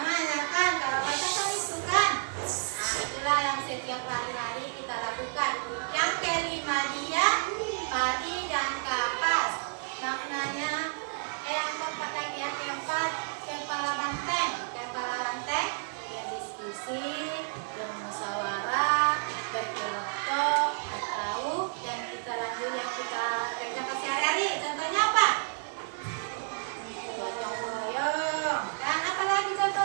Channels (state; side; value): silent; left; digital silence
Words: kan, kalau Batak kan itu kan. Nah, itulah yang setiap hari-hari kita lakukan. Yang kelima dia padi dan kapas. Maknanya yang keempat lagi, yang keempat kepala banteng. Kepala banteng ya diskusi, bermusyawarah, berkelompok, atau yang kita lanjut yang kita kerjakan sehari-hari. Contohnya apa? Gotong royong. Kan apa lagi